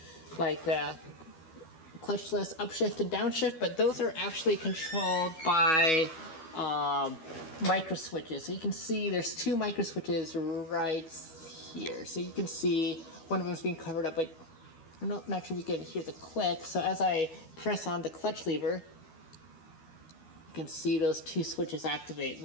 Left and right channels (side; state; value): right; late; 12 ms